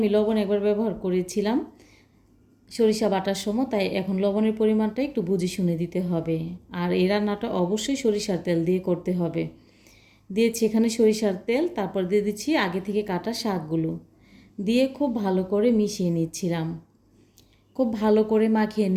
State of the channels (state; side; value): identical; both; correlation 1.00